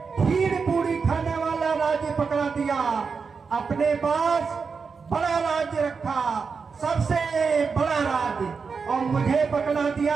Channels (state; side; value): quieter; left; 5.3 dB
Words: खीर पूरी खाने वाला राज्य पकड़ा दिया। अपने पास बड़ा राज्य रखा, सबसे बड़ा राज्य, और मुझे पकड़ा दिया